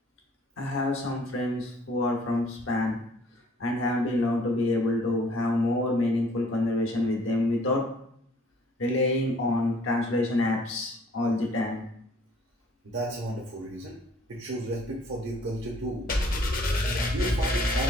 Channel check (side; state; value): both; normal; correlation 0.58